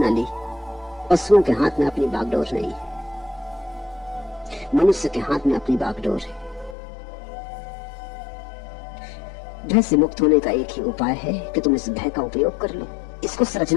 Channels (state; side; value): drops out; right; at 6.8 s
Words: ली। पशुओं के हाथ में अपनी बागडोर नहीं, मनुष्य के हाथ में अपनी बागडोर है। भय से मुक्त होने का एक ही उपाय है कि तुम इस भय का उपयोग कर लो, इसको